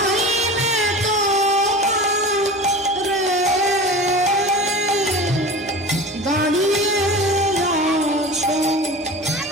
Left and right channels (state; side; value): normal; both; correlation 0.34